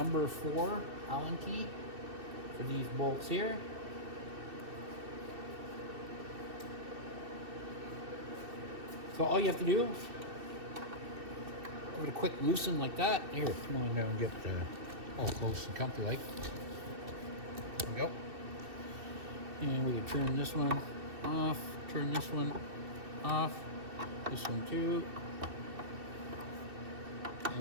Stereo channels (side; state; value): left; late; 2.7 ms